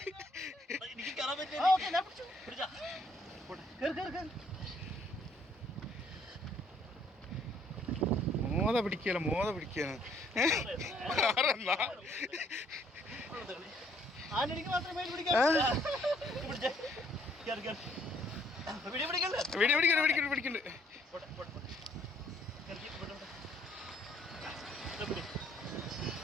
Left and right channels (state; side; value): normal; both; correlation 0.65